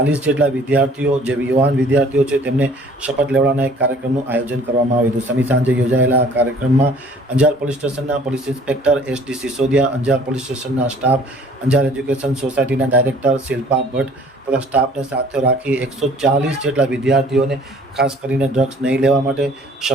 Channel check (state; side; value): normal; both; correlation 0.54